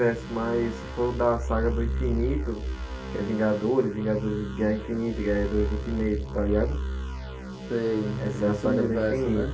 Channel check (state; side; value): noise; right; rumble, 28 dB below the sound